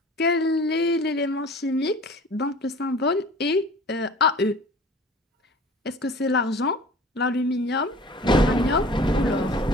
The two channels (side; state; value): both; normal; correlation 0.44